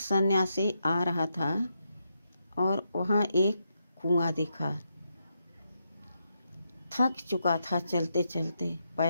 आ रहा था और वहाँ एक कुआं दिखा। थक चुका था चलते चलते,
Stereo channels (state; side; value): inverted; both; correlation -0.82